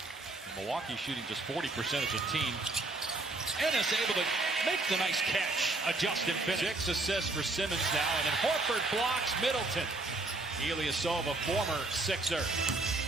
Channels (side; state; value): left; quieter; 3.1 dB